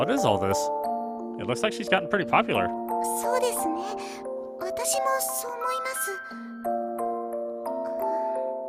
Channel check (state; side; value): identical; both; correlation 1.00